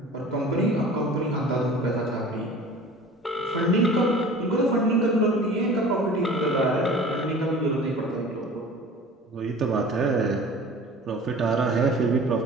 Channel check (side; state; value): both; normal; correlation 0.42